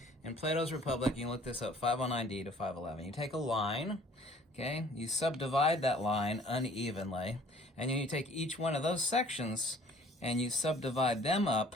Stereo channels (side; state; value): both; normal; correlation 0.55